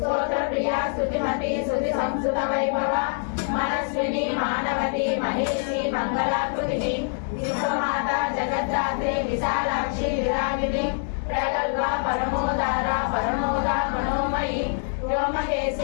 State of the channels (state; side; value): silent; right; digital silence